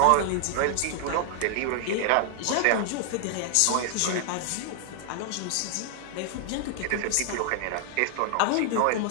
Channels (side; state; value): both; different; correlation 0.00